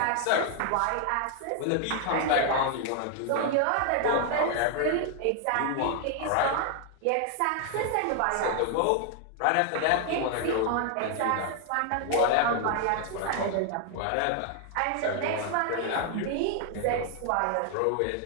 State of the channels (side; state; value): both; different; correlation 0.00